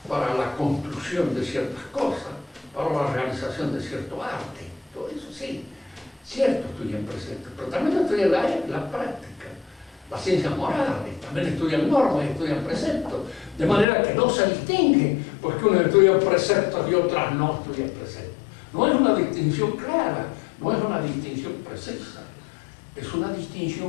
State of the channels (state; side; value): drops out; right; at 13.9 s